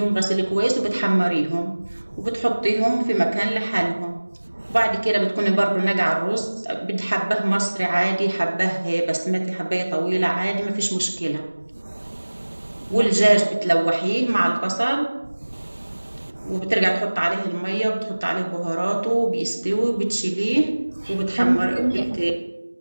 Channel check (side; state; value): both; inverted; correlation -1.00